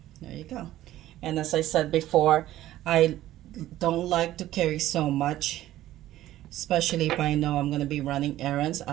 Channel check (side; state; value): left; quieter; 14.2 dB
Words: there you go. And as I said before, I don't like to carry so much. especially if I know I'm going to be running errands.